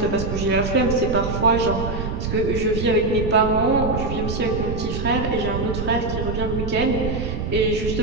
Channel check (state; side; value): noise; right; rumble, 4 dB below the sound